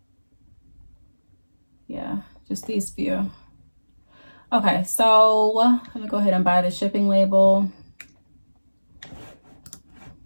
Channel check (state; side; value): inverted; both; correlation -1.00